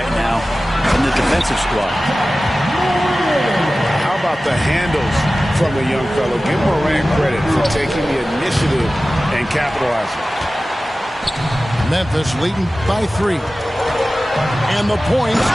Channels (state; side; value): normal; both; correlation 0.96